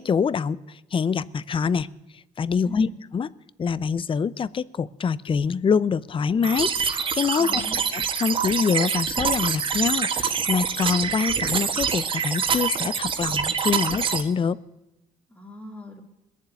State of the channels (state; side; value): normal; both; correlation 0.46